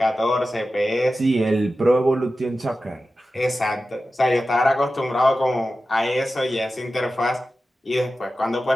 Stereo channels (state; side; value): normal; both; correlation 0.93